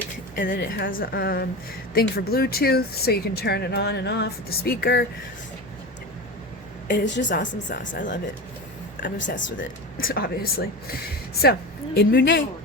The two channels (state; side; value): normal; both; correlation 0.26